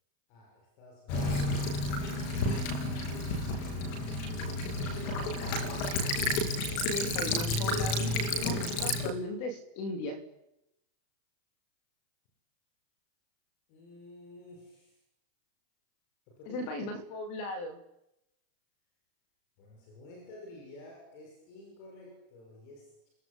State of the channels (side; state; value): right; late; 35 ms